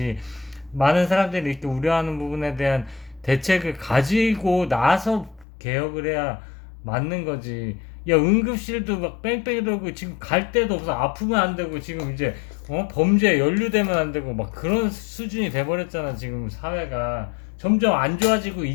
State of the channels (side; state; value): right; drops out; at 5.5 s